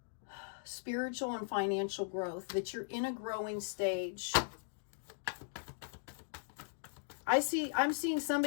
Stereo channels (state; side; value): silent; right; digital silence